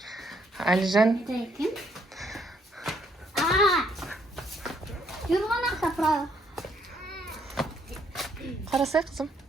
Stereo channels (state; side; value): normal; both; correlation 0.70